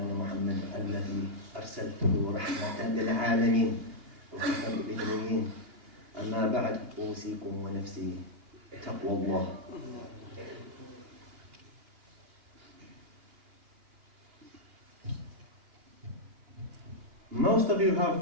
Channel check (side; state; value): left; late; 2.8 ms